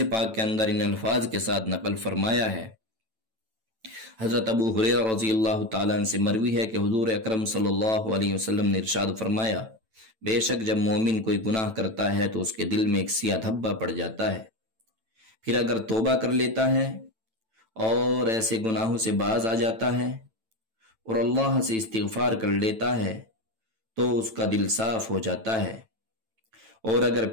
پاک کے اندر ان الفاظ کے ساتھ نقل فرمایا ہے۔ حضرت ابو ہریرہ رضی اللہ تعالیٰ عنہ سے مروی ہے کہ حضور اکرم صلی اللہ علیہ وسلم نے ارشاد فرمایا، بے شک جب مومن کوئی گناہ کرتا ہے تو اس کے دل میں ایک سیاہ دھبا پڑ جاتا ہے، پھر اگر توبہ کر لیتا ہے اور ایسے گناہوں سے باز آ جاتا ہے اور اللہ سے استغفار کر لیتا ہے تو اس کا دل صاف ہو جاتا ہے، اور اگر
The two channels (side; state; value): left; late; 9.0 ms